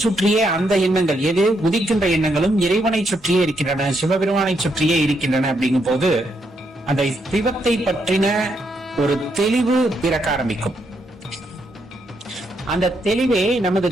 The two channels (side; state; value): both; normal; correlation 0.78